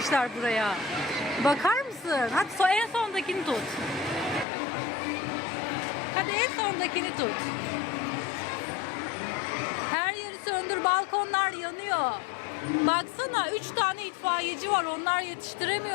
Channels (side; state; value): right; drops out; at 4.5 s